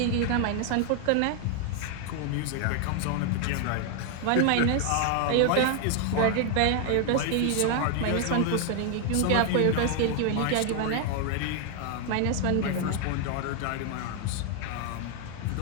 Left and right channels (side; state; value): both; different; correlation 0.00